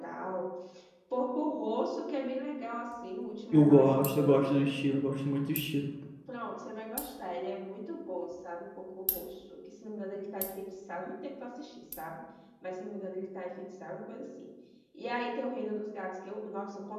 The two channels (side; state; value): both; identical; correlation 1.00